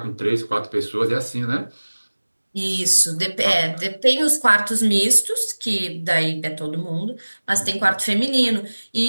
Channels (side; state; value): both; inverted; correlation -1.00